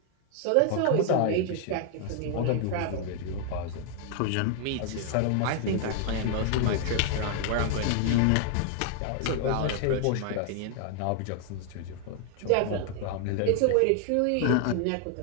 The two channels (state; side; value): different; both; correlation 0.00